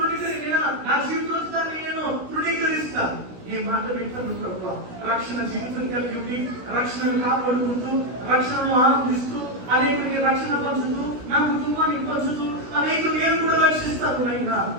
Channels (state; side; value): late; left; 16 ms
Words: నా జీవితాన్ని నేను తృణీకరిస్తా. ఈ మాట వింటాను ప్రభు. రక్షణ జీవితం కలిగి ఉండి, రక్షణను కాపాడుకుంటూ, రక్షణను ఆనందిస్తూ, అనేకుడికి రక్షణ పంచుతూ, నా కుటుంబానికి పంచుతూ, అనేకులు నేను కూడా రక్షిస్తాను. అయినా